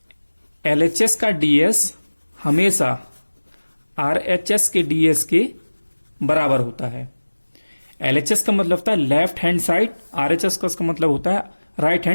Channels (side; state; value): both; inverted; correlation -1.00